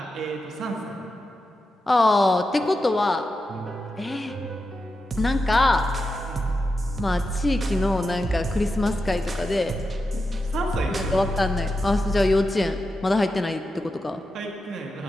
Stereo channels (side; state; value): both; normal; correlation 0.89